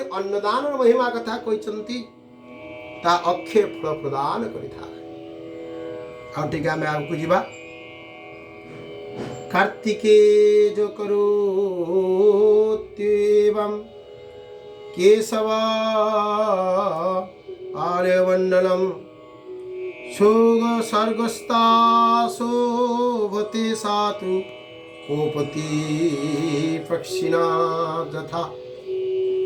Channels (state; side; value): identical; both; correlation 1.00